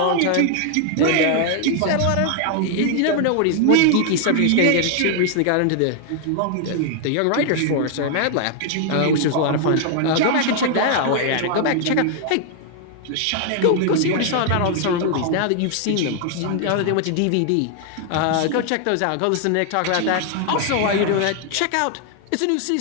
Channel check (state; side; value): different; both; correlation 0.00